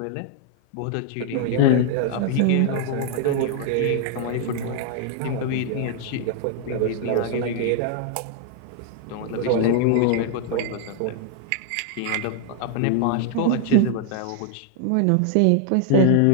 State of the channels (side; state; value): both; different; correlation 0.00